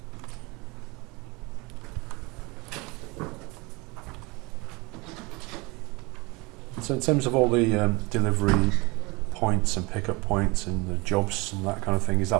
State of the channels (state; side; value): quieter; left; 25.7 dB